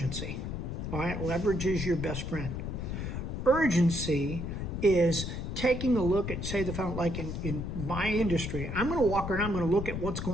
All right? Leverage is your best friend. Urgency is taking a look at, say, like in my industry, I'm going to walk around, I'm going to look at what's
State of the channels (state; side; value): noise; left; rumble, 4 dB below the sound